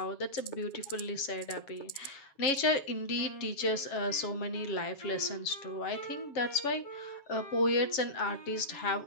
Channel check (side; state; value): right; late; 7.2 ms